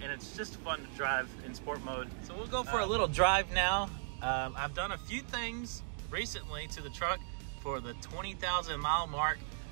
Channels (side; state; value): left; silent; digital silence